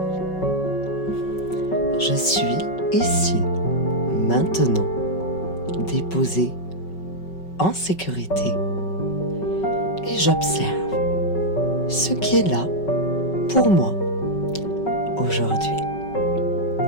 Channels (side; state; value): right; late; 5.3 ms